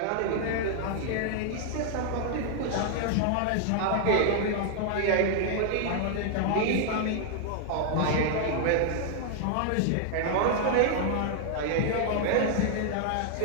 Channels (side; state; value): both; different; correlation 0.00